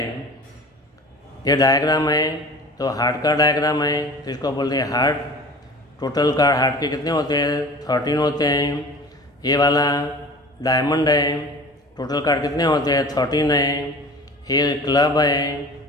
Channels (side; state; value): both; normal; correlation 0.40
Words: ये डायग्राम है, तो हार्ट का डायग्राम है, तो इसको बोलते हैं हार्ट। टोटल कार्ड हार्ट के कितने होते हैं? 13 होते हैं। ये वाला डायमंड है, टोटल कार्ड कितने होते हैं? 13 है। ये क्लब है,